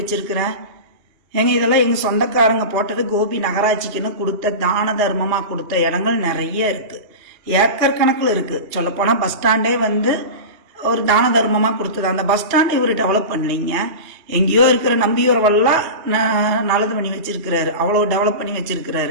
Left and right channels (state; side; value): late; left; 2.9 ms